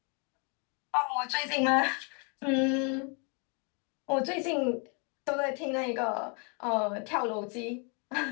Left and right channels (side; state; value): right; quieter; 35.9 dB